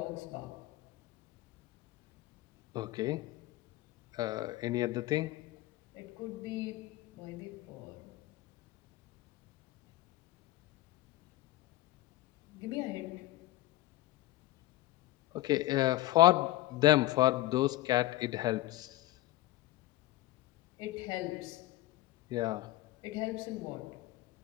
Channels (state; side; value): quieter; right; 16.5 dB